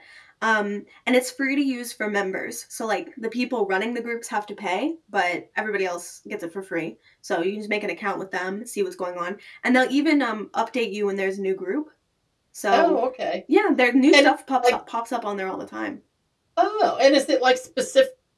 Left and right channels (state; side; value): identical; both; correlation 1.00